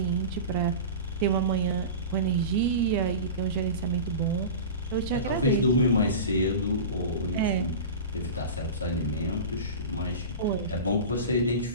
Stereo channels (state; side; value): inverted; both; correlation -0.30